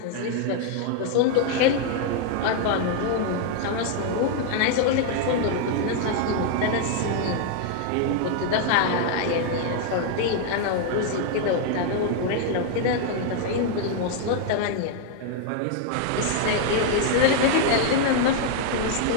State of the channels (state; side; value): different; both; correlation 0.00